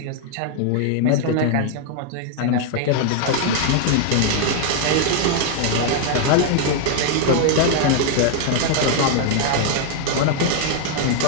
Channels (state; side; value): different; both; correlation 0.00